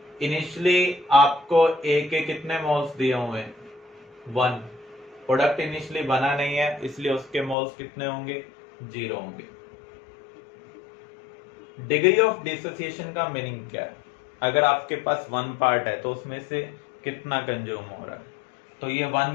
इनिशियली आपको A के कितने मोल्स दिए हुए हैं, 1. प्रोडक्ट इनिशियली बना नहीं है इसलिए उसके मोल्स कितने होंगे, 0 होंगे. डिग्री ऑफ डिसोसिएशन का मीनिंग क्या है, अगर आपके पास 1 पार्ट है तो उसमें से कितना कंज्यूम हो रहा है. तो ये 1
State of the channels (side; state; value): right; drops out; at 7.6 s